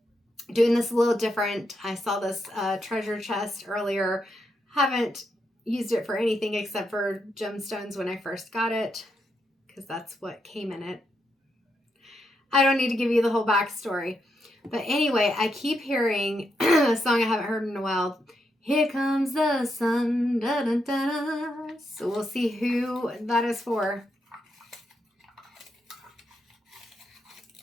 doing this a little different. I saw this treasure chest earlier. Haven't used it for anything except for gemstones when I first got it, because that's what came in it. I don't need to give you the whole backstory. But anyway, I keep hearing a song I haven't heard in a while. Here comes the sun. Da, da, da, da. So we'll see who that is for.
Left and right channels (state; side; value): normal; both; correlation 0.82